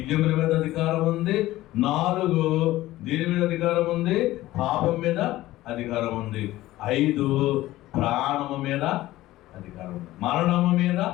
మీద అధికారం ఉంది, 4 దీని మీద అధికారం ఉంది, పాపం మీద అధికారం ఉంది, 5 ప్రాణము మీద అధికారం ఉంది. మరణము మీద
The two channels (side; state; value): right; quieter; 16.3 dB